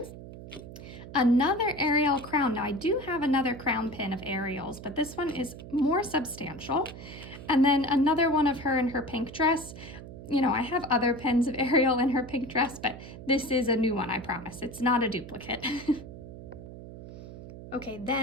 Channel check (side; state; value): right; noise; hum, 13 dB below the sound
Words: Another Ariel crown. Now I do have another crown pin of Ariel's, but this one is more substantial. And then another one of her in her pink dress. You know, I have other pins of Ariel in her pink dress, but this is a new one, I promise. It's not a duplicate. Okay,